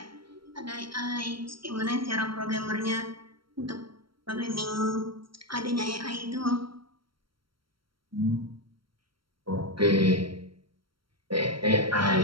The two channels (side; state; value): left; late; 0.74 ms